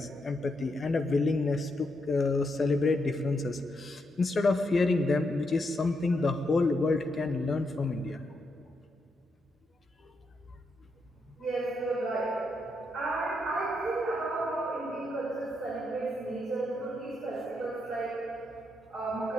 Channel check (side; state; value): both; normal; correlation 0.81